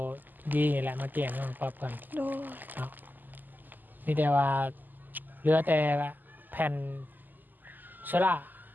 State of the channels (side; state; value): left; late; 0.087 ms